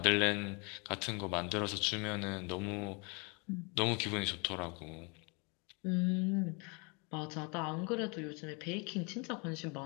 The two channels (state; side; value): quieter; right; 31.8 dB